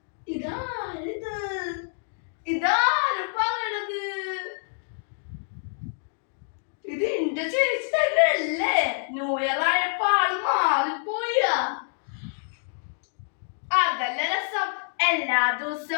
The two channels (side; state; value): right; silent; digital silence